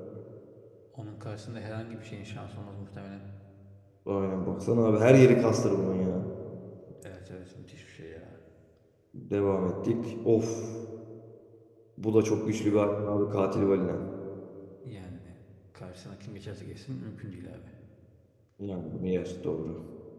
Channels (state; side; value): identical; both; correlation 1.00